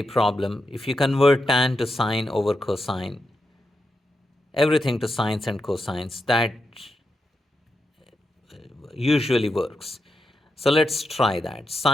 problem, if you convert tan to sine over cosine, everything to sines and cosines, that usually works. So let's try that.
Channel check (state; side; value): normal; both; correlation 0.86